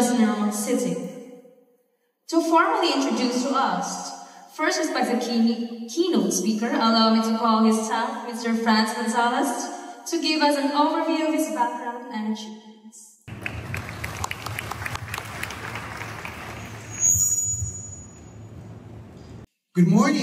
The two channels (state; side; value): identical; both; correlation 1.00